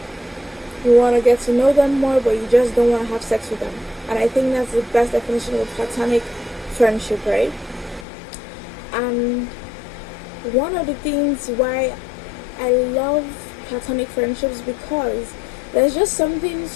you want to get to know them more, but you just don't want to have sex with them. And I think that's the best definition of platonic friendship, right? And one of the things why I love platonic friendships because there's just something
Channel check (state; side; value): drops out; right; at 8.1 s